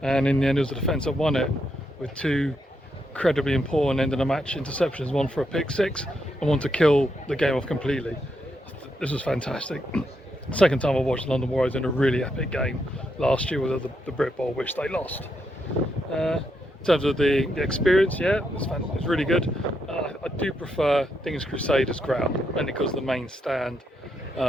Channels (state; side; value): normal; both; correlation 0.80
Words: and in the end it was the defence that won it, with two incredibly important end of the match interceptions, one for a pick six and one to kill the game off completely. This was fantastic. Second time I watched London Warriors in a really epic game last year with the Britbowl, which they lost. In terms of the experience, yeah, it's really good. I do prefer Things Crusaders ground, mainly because the main stand.